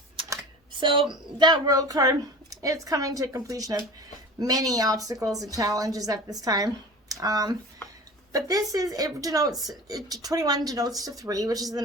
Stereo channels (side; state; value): both; normal; correlation 0.37